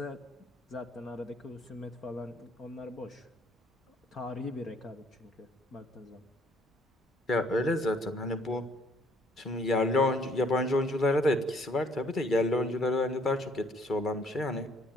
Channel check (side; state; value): both; normal; correlation 0.62